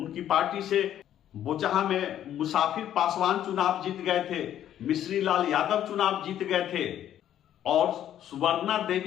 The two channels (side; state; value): right; quieter; 11.1 dB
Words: पार्टी से बोचहा में मुसाफिर पासवान चुनाव जीत गए थे, मिश्री लाल यादव चुनाव जीत गए थे और सुवर्णा